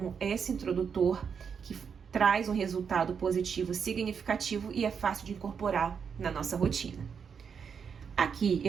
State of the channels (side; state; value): left; quieter; 6.7 dB